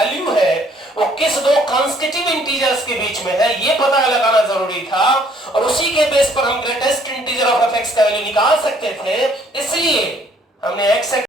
है वो किस दो कांस्टीट्यूटिव इंटीजर्स के बीच में है, ये पता लगाना जरूरी था, और उसी के बेस पर हम ग्रेटेस्ट इंटीजर ऑफ fx का वैल्यू निकाल सकते थे। इसलिए हमने x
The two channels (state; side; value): normal; both; correlation 0.62